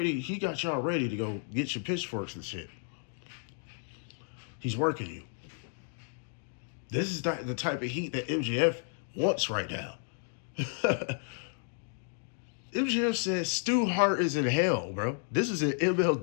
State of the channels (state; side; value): silent; right; 56 dB below the other